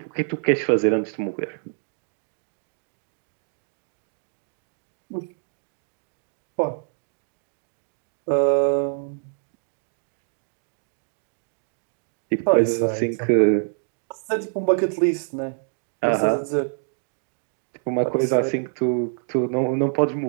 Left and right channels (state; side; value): silent; left; digital silence